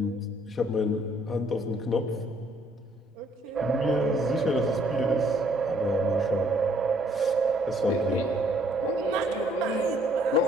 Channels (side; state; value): both; normal; correlation 0.64